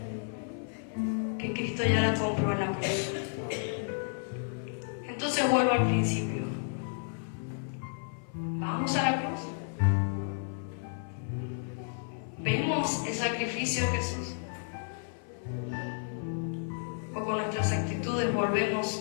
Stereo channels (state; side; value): silent; right; 56 dB below the other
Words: que Cristo ya la compró en la cruz. Entonces vuelvo al principio. Vamos a la cruz. Vemos el sacrificio de Jesús. O con nuestras actitudes